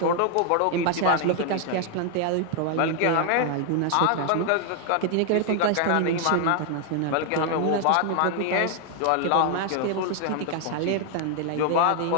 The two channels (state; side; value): different; both; correlation 0.00